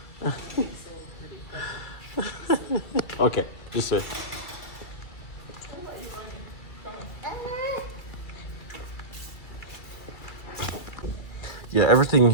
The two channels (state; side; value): late; right; 2.3 ms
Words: okay, this way. Yeah, everything